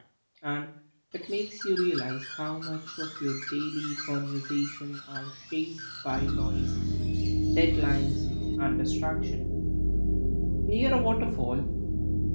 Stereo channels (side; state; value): both; inverted; correlation -1.00